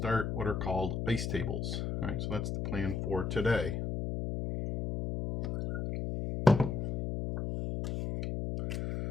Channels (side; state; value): left; noise; hum, 2 dB below the sound